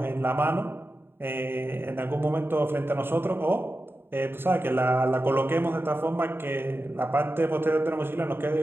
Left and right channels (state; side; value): late; left; 0.11 ms